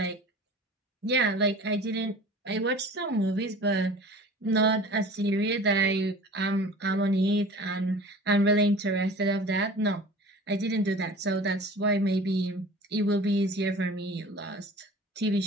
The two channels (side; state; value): both; normal; correlation 0.41